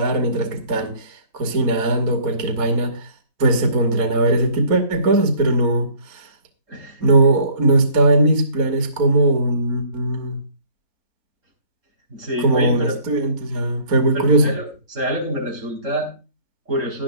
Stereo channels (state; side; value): late; left; 4.2 ms